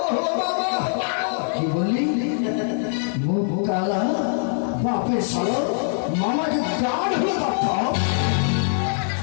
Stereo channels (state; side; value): silent; right; 64 dB below the other